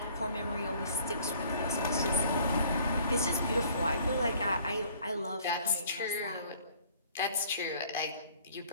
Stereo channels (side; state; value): both; inverted; correlation -0.56